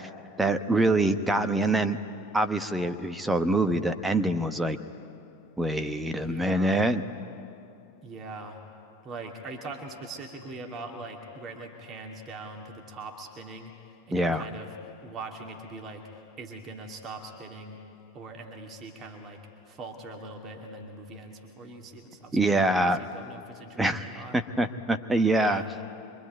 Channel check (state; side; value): normal; both; correlation 0.66